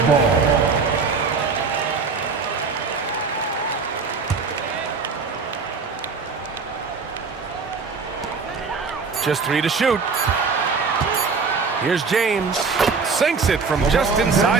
ball. Just 3 to shoot. Here's James. Sinks it from just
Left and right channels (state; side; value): quieter; left; 4.9 dB